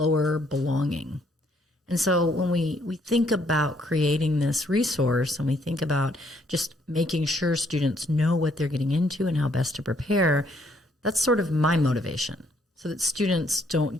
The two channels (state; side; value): normal; both; correlation 0.68